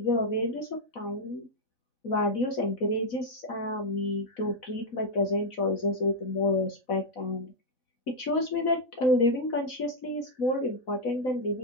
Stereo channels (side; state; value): right; late; 4.0 ms